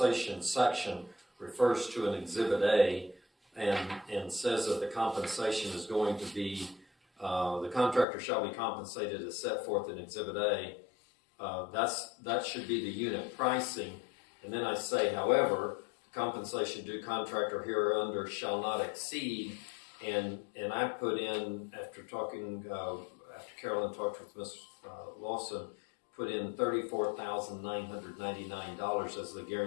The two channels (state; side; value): drops out; right; at 8.1 s